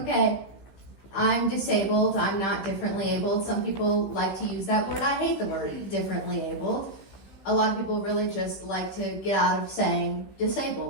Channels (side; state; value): right; late; 15 ms